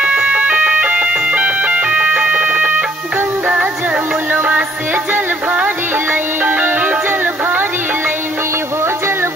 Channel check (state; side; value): normal; both; correlation 0.65